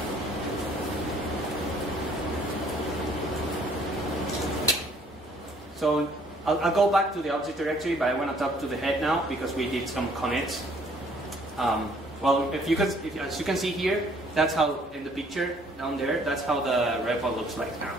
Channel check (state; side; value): normal; both; correlation 0.61